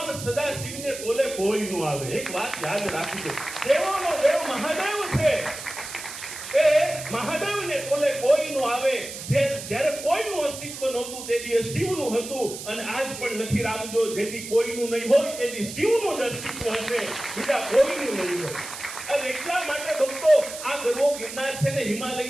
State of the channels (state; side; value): noise; right; hiss, 10 dB below the sound